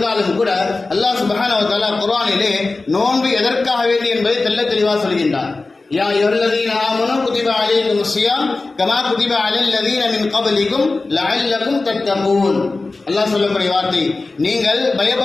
கூட அல்லாஹ் சுப்ஹானஹு வ தஆலா குர்ஆனிலே நோன்பு எதற்காக வேண்டி என்பதை தெள்ள தெளிவாக சொல்கின்றார். யா அய்யுஹல்லதீன ஆமனூ குதிப அலைக்குமுஸ் ஸியாம் கமா குதிப அலல்லதீன மின் கப்லிக்கும் லஅல்லக்கும் தத்தகூன். அல்லாஹ் சொல்லக்கூடிய வார்த்தை, நீங்கள்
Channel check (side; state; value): right; quieter; 3.5 dB